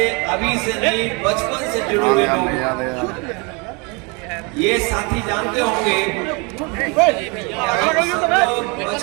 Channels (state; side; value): quieter; left; 30.5 dB